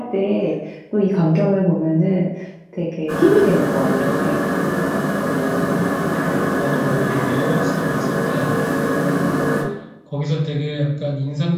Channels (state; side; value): identical; both; correlation 1.00